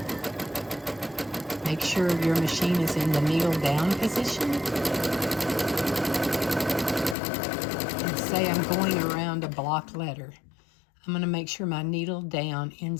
make sure your machine is in the needle down position. And say I'm going around a block letter. I'm going to make sure my needle down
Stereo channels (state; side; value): drops out; right; at 7.2 s